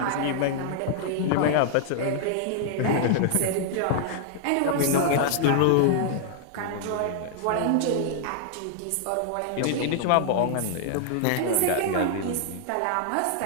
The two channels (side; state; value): both; different; correlation -0.01